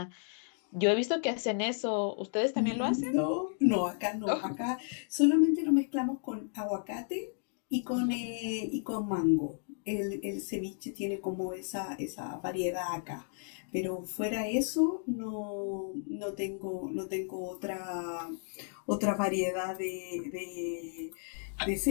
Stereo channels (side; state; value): right; silent; 56 dB below the other